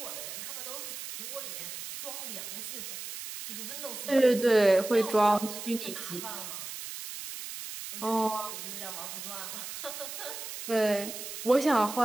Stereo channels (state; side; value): noise; right; hiss, 8 dB below the sound